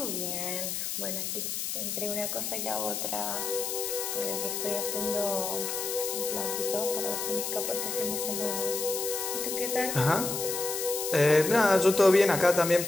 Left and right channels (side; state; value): left; noise; hiss, 3 dB below the sound